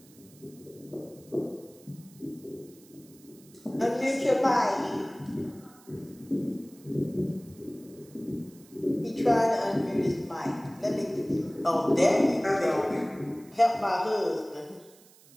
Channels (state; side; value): noise; right; hiss, 25 dB below the sound